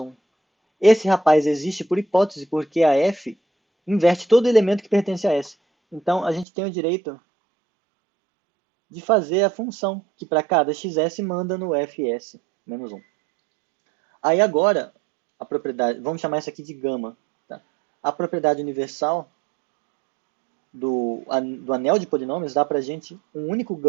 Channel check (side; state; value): left; drops out; at 6.5 s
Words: Esse rapaz existe por hipótese, porque a f inverte todo elemento que pertence a S. Então, a gente tem o direito de fazer a função, que para cada xs manda no fs menos 1. Aí agora, a propriedade, vamos chamar isso aqui de gama. Tá? A propriedade universal do anel de polinômios dá para a gente um único